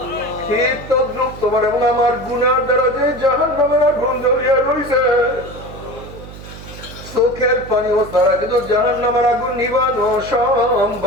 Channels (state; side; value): noise; right; hum, 15 dB below the sound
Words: ঠিক তদ্রুপ তোমার এবং আমার গুনার দ্বারা যে জাহান্নামের আগুন জ্বলিয়া রইছে, চোখের পানিও ছাড়া কিন্তু জাহান্নামের আগুন নিবানো